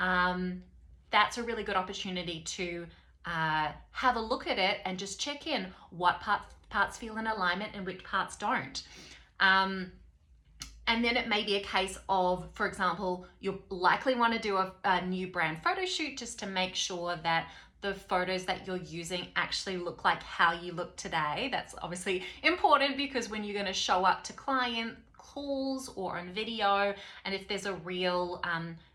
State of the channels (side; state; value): both; identical; correlation 1.00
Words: a really good opportunity to have a look at it and just check in what parts feel in alignment and which parts don't. And then it may be a case of, for example, you'll likely want to do a new brand photo shoot just to make sure that the photos that you're using actually look like how you look today. That's obviously important because when you're going to show up to client calls or on video, and if there's a real